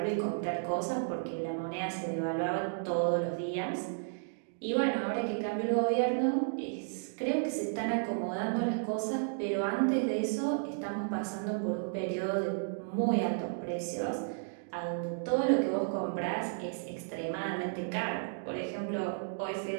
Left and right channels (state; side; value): silent; left; digital silence